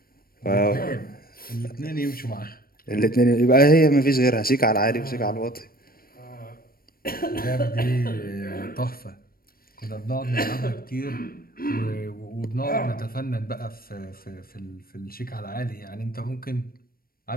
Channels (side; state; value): right; late; 0.43 ms